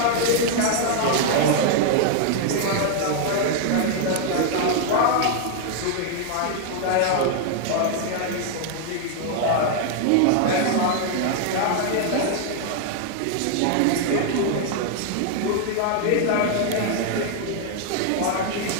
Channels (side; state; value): both; different; correlation 0.00